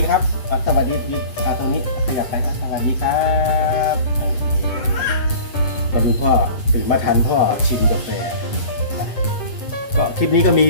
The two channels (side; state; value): right; late; 8.2 ms